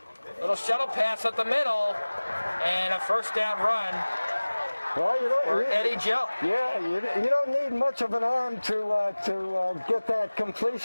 Little shuttle pass up the middle, and a 1st down run. Well, Eddie Jell. Yeah, you don't need much of an arm to get that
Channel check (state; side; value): inverted; both; correlation -1.00